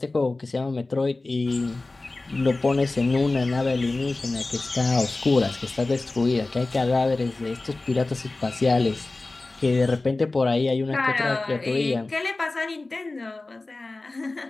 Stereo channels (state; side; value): quieter; right; 3.2 dB